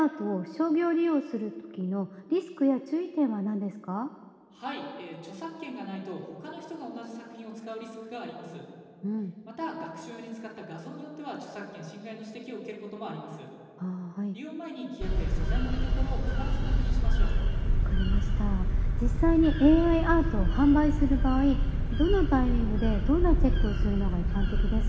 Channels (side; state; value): both; identical; correlation 1.00